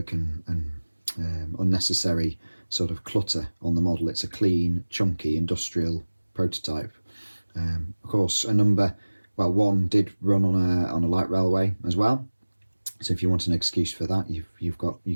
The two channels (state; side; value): inverted; both; correlation -1.00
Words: and unnecessary sort of clutter on the model. It's a clean, chunky, industrial prototype. Of course, one did run on a light railway as well. So if you want an excuse for that,